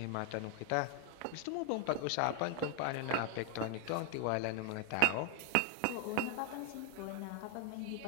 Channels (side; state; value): both; different; correlation 0.00